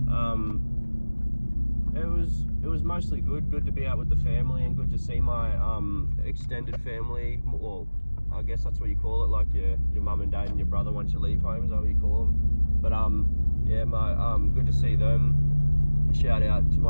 It was mostly good to be out with the family and good to see my extended family. Well, I guess that's what you call it, like your mum and dad and your brother once you leave home, is that what you call them? But yeah, good to see them. Shout out to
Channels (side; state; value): both; inverted; correlation -1.00